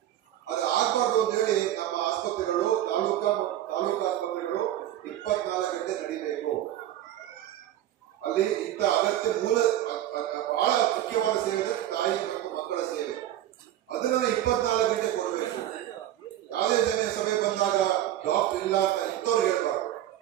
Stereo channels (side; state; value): left; quieter; 12.6 dB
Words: ಅದು ಆಗ್ಬಾರ್ದು ಅಂತ ಹೇಳಿ ನಮ್ಮ ಆಸ್ಪತ್ರೆಗಳು, ತಾಲೂಕು ಆಸ್ಪತ್ರೆಗಳು 24 ಗಂಟೆ ನಡೀಬೇಕು. ಅಲ್ಲಿ ಇಂಥ ಅಗತ್ಯ ಬಹಳ ಮುಖ್ಯವಾದ ಸೇವೆ ತಾಯಿ ಮತ್ತು ಮಕ್ಕಳ ಸೇವೆ, ಅದನ್ನ 24 ಗಂಟೆ ಕೊಡಬೇಕು. ಯಾವುದೇ ಸಭೆ ಬಂದಾಗ ಡಾಕ್ಟರ್ ಇಲ್ಲ ಅಂತ ಇಂಥವ್ರು ಹೇಳ್ಬಾರ್ದು.